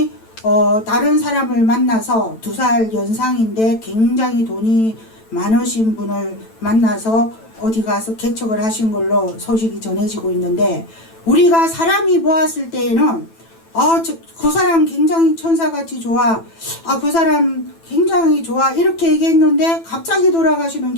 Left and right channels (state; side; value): late; right; 9.0 ms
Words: 다른 사람을 만나서 2살 연상인데 굉장히 돈이 많으신 분을 만나서 어디 가서 개척을 하신 걸로 소식이 전해지고 있는데 우리가 사람이 보았을 때에는 그 사람 굉장히 천사같이 좋아, 그 사람 굉장히 좋아 이렇게 얘기했는데 갑자기 돌아가시는